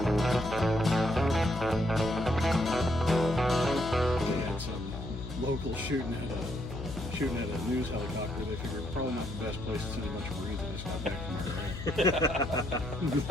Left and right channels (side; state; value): left; noise; hum, 9 dB below the sound